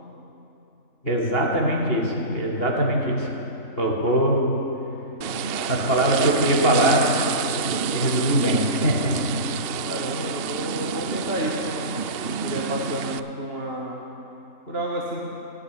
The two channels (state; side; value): late; right; 2.8 ms